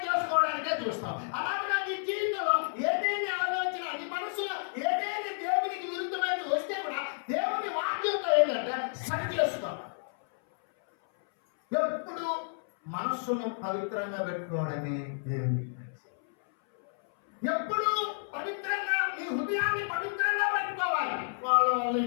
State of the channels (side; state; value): right; silent; 57 dB below the other